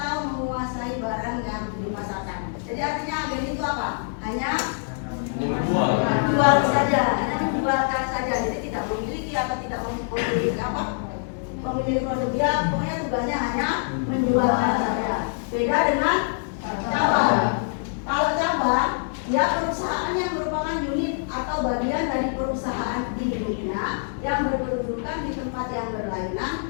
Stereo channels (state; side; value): silent; right; digital silence